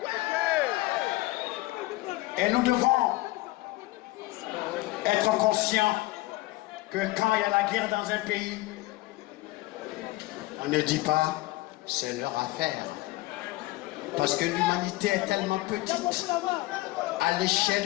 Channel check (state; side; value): quieter; right; 19.3 dB